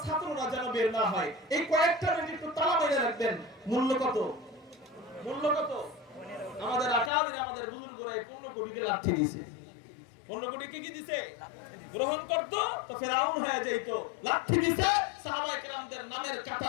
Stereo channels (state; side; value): drops out; right; at 7.1 s